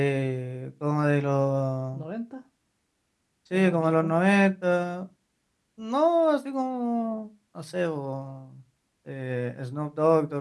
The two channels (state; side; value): identical; both; correlation 1.00